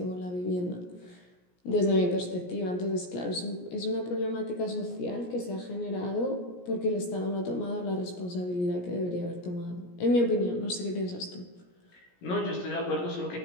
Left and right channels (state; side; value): late; right; 17 ms